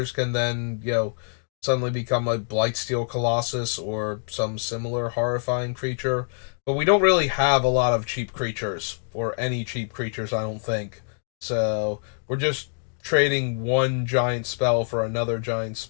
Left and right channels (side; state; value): right; silent; digital silence